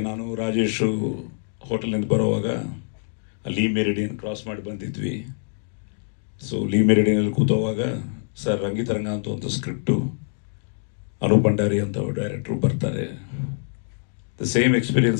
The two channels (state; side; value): silent; right; digital silence